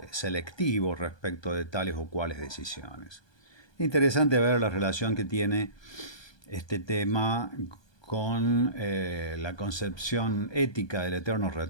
selectivo respecto de tales o cuales decisiones. Interesante ver la relación que tiene este tema con la concepción ética del eterno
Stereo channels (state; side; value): late; right; 1.2 ms